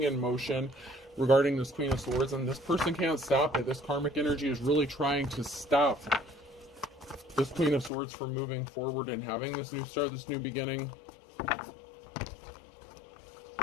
in motion regarding this Queen of Swords, and this person can't stop it. This karmic energy is really trying to stop this Queen of Swords from moving forward and having this new start, this new beginning.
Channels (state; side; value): drops out; right; at 7.9 s